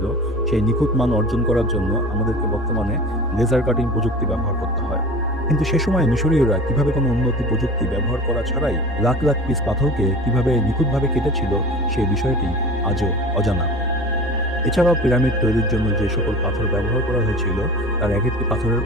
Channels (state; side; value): normal; both; correlation 0.38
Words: সেই নিখুঁত মান অর্জন করার জন্য আমাদেরকে বর্তমানে লেজার কাটিং প্রযুক্তি ব্যবহার করতে হয়। কিন্তু সে সময় মিশরীয়রা কিভাবে কোনো উন্নতি প্রযুক্তি ব্যবহার করা ছাড়াই লাখ লাখ পিস পাথরকে কিভাবে নিখুঁতভাবে কেটেছিল, সেই বিষয়টি আজও অজানা। এছাড়াও পিরামিড তৈরির জন্য যে সকল পাথর ব্যবহার করা হয়েছিল তার এক একটি পাথরের